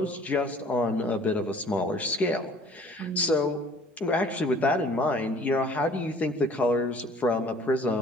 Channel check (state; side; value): normal; both; correlation 0.53